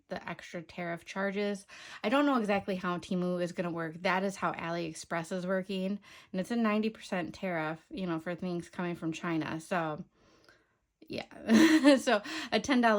extra tariff charges. I don't know exactly how Temu is going to work. That is how AliExpress is working, and it's a 90% tariff, for things coming from China. So yeah, so a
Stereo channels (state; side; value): identical; both; correlation 1.00